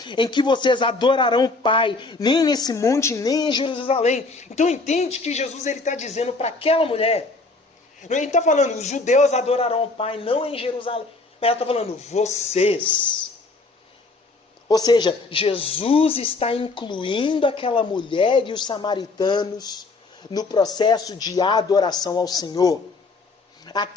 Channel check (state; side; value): quieter; right; 3.5 dB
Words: em que vocês adorarão o Pai, nem nesse monte, nem em Jerusalém. Então, entende que Jesus está dizendo para aquela mulher. Ele está falando, os judeus adorarão o Pai, não em Jerusalém. Mas ela está falando, vocês. Ou seja, Jesus está incluindo aquela mulher e os samaritanos no processo de adoração ao Senhor.